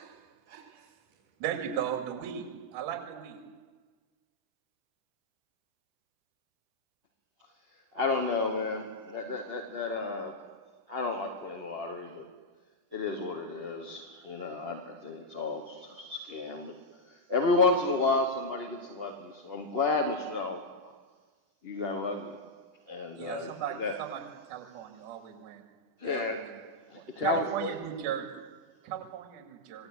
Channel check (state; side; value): late; left; 10 ms